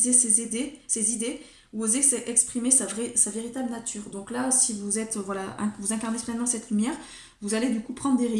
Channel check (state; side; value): identical; both; correlation 1.00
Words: ses idées, ou oser exprimer sa véritable nature. Donc là, si vous êtes, voilà, vous incarnez pleinement cette lumière, vous allez du coup prendre des